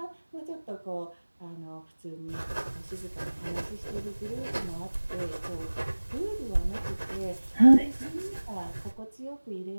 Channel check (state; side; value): inverted; both; correlation -1.00